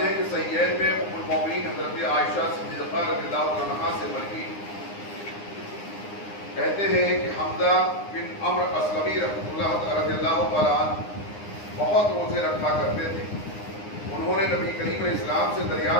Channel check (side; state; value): right; late; 9.8 ms